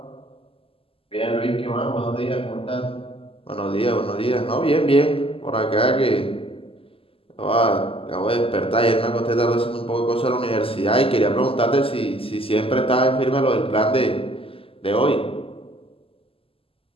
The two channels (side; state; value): right; late; 0.27 ms